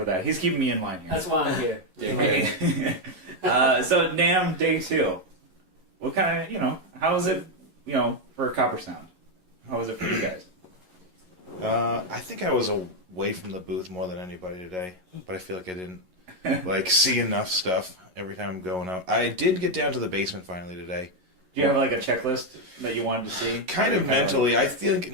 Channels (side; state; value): left; late; 11 ms